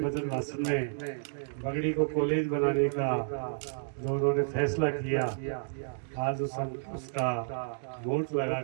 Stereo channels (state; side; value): silent; left; digital silence